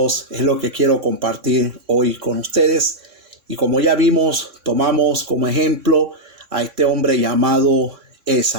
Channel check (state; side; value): late; left; 3.6 ms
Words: es lo que quiero compartir hoy con ustedes. Y como ya vimos, tomamos como ejemplo a este hombre llamado